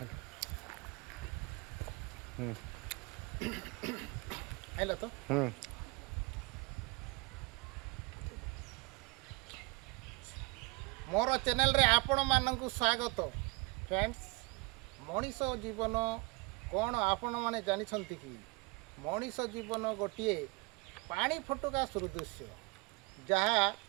आइला तो मोर चैनल रे आपण मानक स्वागत फ्रेंड्स मनीष जीवन कौन आपण माने जानिछंती कि मनीष जीवन गोटे पानी फटका सदृश जहाँ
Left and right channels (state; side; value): quieter; left; 27.2 dB